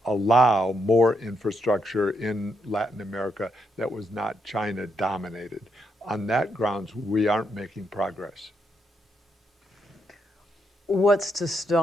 allow more infrastructure in Latin America that was not China dominated. On that grounds, we aren't making progress. What's to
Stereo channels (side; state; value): both; normal; correlation 0.79